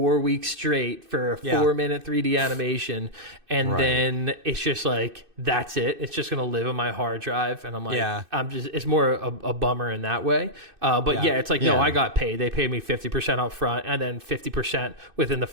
weeks straight for a 4-minute 3D animation, and then it's just like that's it. It's just gonna live on my hard drive, and I'm like, I'm just. It's more a bummer in that way. But it's like no, I got paid. They paid me 50% up front, and then 50% within the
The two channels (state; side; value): late; left; 2.6 ms